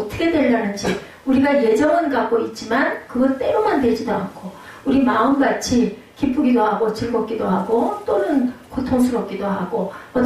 되려는지 우리가 예정은 갖고 있지만 그건 때로만 되지도 않고 우리 마음같이 기쁘기도 하고 즐겁기도 하고 또는 고통스럽기도 하고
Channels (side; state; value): both; identical; correlation 1.00